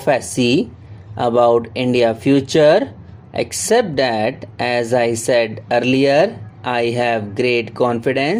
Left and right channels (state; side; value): identical; both; correlation 1.00